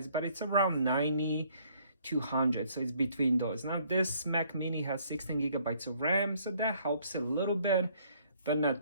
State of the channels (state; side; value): inverted; both; correlation -0.64